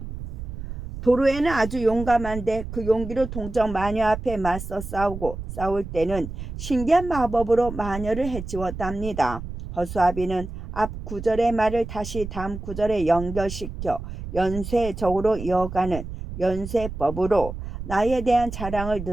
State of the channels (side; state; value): right; noise; rumble, 9 dB below the sound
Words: 도로에는 아주 용감한데 그 용기로 동정 마녀 앞에 맞서 싸울 때는 신기한 마법으로 마녀를 해치웠답니다. 허수아비는 앞 구절의 말을 다시 다음 구절에 연결시켜 연쇄적으로 이어가는 연쇄법으로 나에 대한 자랑을